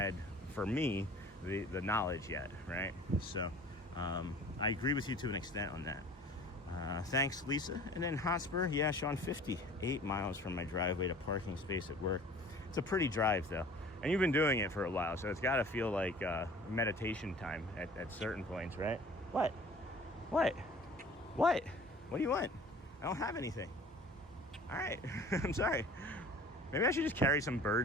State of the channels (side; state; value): both; normal; correlation 0.46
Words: for me the knowledge yet, right? So I agree with you to an extent on that. Thanks, Lisa. And then Hotspur, yeah, Sean, 58 miles from my driveway to parking space at work. It's a pretty drive, though. And you've been doing it for a while, so it's got to feel like meditation time at certain points, right? What? What? What? What do you want? I don't have anything. All right. I'm sorry. Maybe I should just carry some